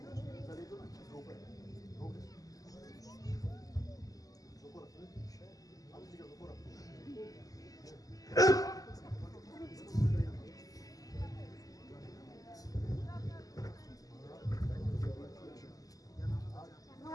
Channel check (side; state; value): right; late; 0.17 ms